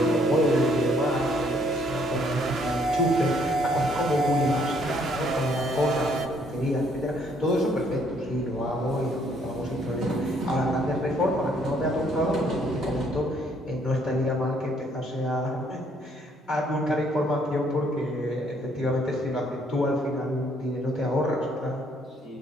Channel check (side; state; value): both; normal; correlation 0.66